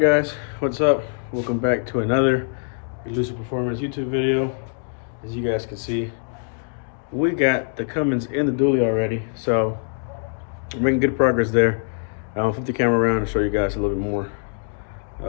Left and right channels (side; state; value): right; silent; 63 dB below the other